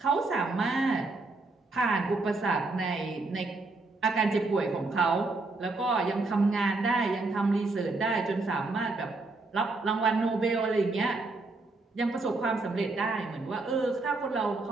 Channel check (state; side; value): quieter; left; 3.4 dB